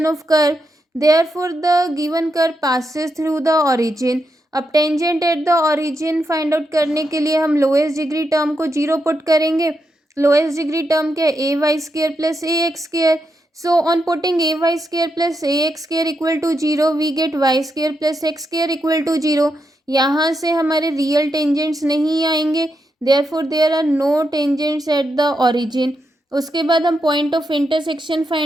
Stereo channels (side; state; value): both; normal; correlation 0.84